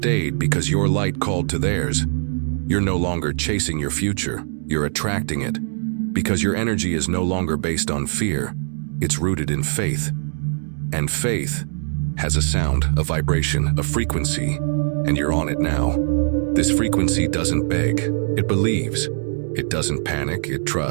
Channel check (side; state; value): left; silent; digital silence